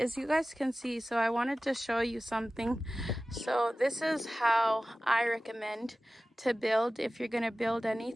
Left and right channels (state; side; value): normal; both; correlation 0.96